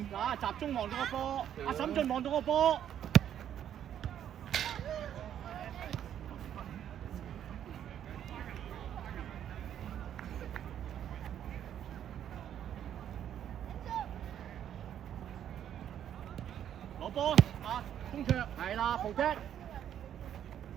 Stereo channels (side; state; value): left; quieter; 10.0 dB